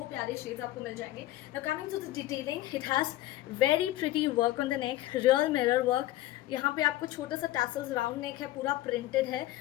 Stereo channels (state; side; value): quieter; right; 15.8 dB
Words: प्यारे शेड्स आपको मिल जाएंगे. Now coming to the detailing, it has very pretty work on the neck, real mirror work. यहाँ पे आपको छोटा सा टैसल्स, राउंड नेक है, पूरा प्रिंटेड है